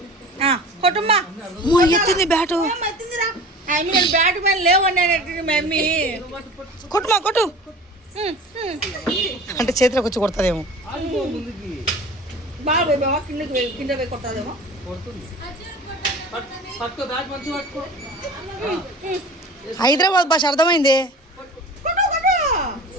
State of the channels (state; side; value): normal; both; correlation 0.39